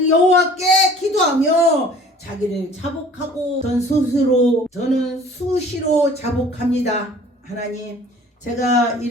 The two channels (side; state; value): both; normal; correlation 0.49